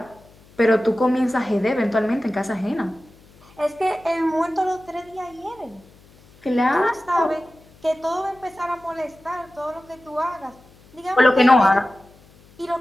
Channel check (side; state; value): left; noise; hum, 27 dB below the sound